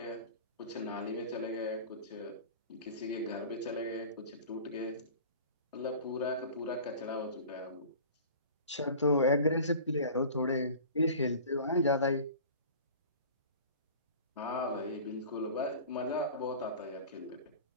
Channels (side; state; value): both; inverted; correlation -0.40